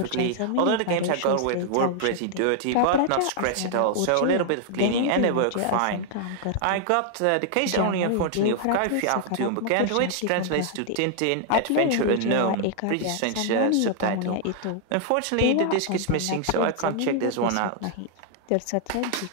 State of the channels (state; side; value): different; both; correlation 0.00